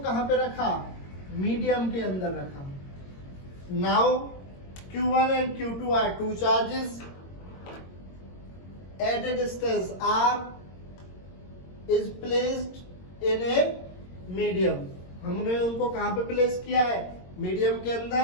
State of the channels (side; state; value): right; late; 22 ms